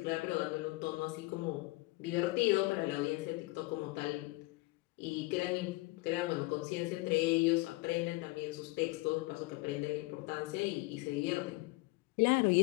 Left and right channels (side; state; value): right; quieter; 22.5 dB